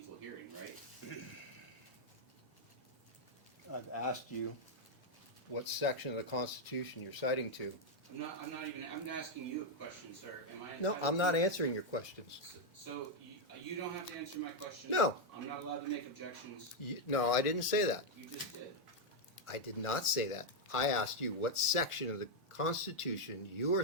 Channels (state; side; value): late; right; 1.4 ms